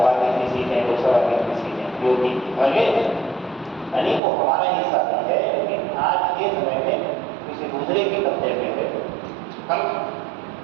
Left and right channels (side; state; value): left; drops out; at 4.2 s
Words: की इतनी सीटें, लोकसभा की इतनी सीटें, योगी यानी वो हमारा हिस्सा नहीं है। लेकिन आज के समय में किसी दूसरे के कब्जे में है। हम